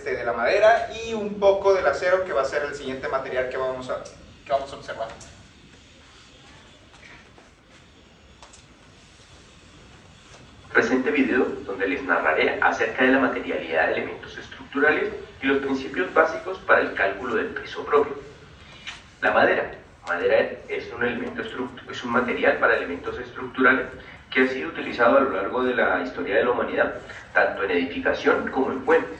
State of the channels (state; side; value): identical; both; correlation 1.00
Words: la madera y un poco del acero, que va a ser el siguiente material que vamos a observar. Presente video donde les narraré acerca de la materialidad de elementos estructurales y los principios básicos para el cálculo del peso propio. La madera. Madera es un material para elementos estructurales que ha sido utilizado a lo largo de la historia de la humanidad, tanto en edificación como en